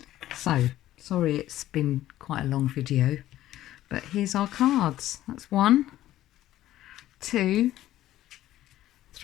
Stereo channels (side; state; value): right; quieter; 14.0 dB